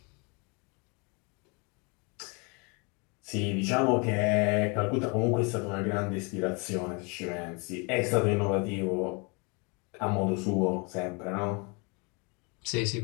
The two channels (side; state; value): right; quieter; 31.5 dB